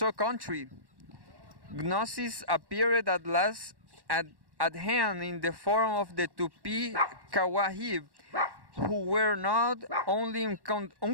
country, Gnosis appeared at last at hand in the form of the Tupi Kawahib, who were not only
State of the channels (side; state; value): left; late; 1.1 ms